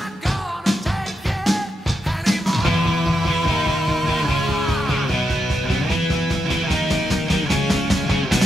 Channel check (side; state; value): both; normal; correlation 0.85